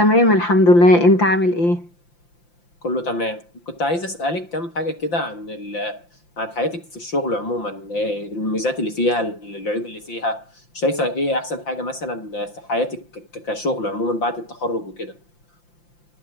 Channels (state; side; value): late; right; 5.8 ms